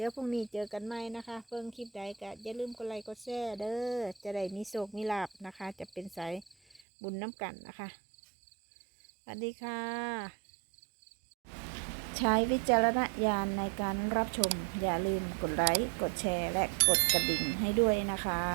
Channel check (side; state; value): left; drops out; at 6.8 s